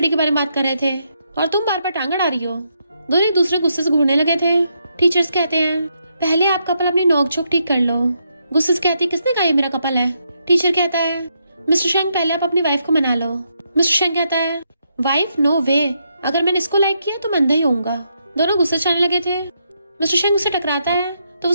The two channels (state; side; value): inverted; both; correlation -0.79